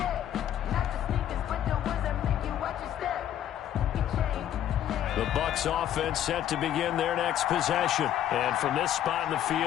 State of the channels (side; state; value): right; quieter; 11.1 dB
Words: The Bucs offense set to begin their next possession. And from this spot in the